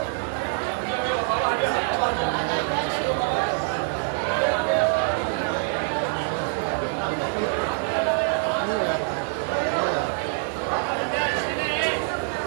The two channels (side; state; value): left; silent; 61 dB below the other